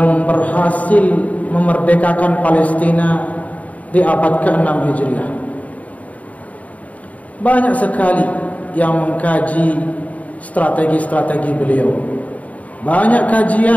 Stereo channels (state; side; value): late; right; 0.070 ms